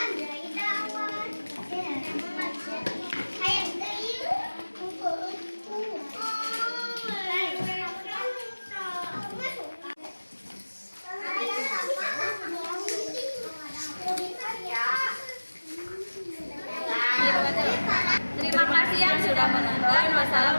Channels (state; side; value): inverted; both; correlation -1.00